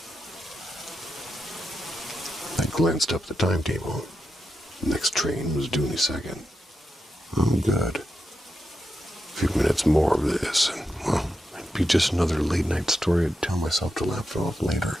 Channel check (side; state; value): both; normal; correlation 0.87